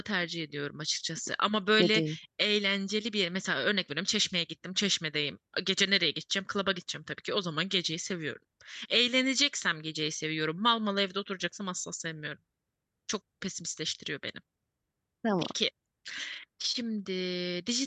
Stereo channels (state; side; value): identical; both; correlation 1.00